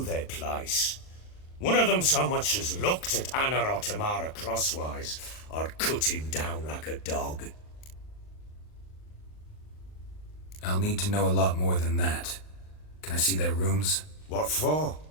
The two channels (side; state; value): right; late; 39 ms